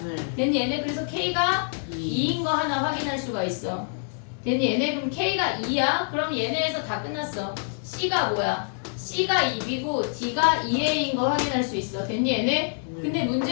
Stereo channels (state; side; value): silent; right; 61 dB below the other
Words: 네. 됐니? 얘네 그래서 K가 2. 2인 거 하나 확인할 수가 있어. 됐니? 얘네 그럼 K가 2야? 그럼 얘네에서 다 끝났어. C가 뭐야? C가 2B고 D가 2A인 거 확인할 수 있어. 됐니? 얘네? 근데